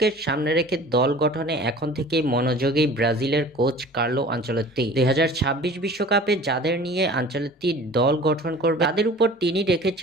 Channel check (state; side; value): normal; both; correlation 0.44